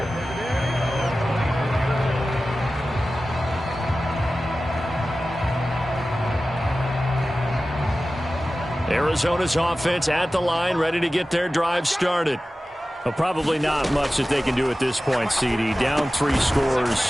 Arizona's offense at the line, ready to get their drive started. Well, probably not much that they can do at this point, CD. Down 3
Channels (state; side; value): normal; both; correlation 0.95